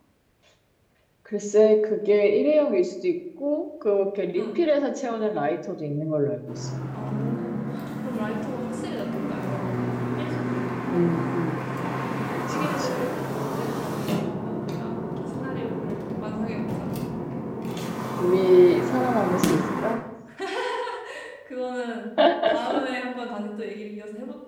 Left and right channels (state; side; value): identical; both; correlation 1.00